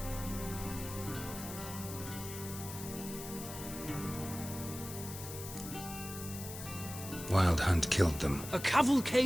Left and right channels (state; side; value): noise; left; hiss, 10 dB below the sound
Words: Wild Hunt killed them. A